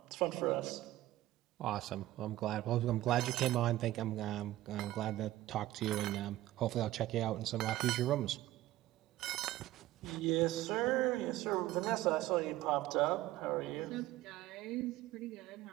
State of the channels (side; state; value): left; quieter; 15.8 dB